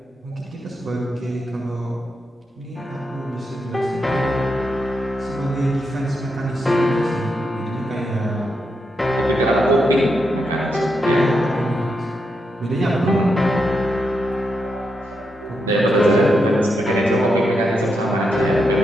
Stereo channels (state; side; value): normal; both; correlation 0.83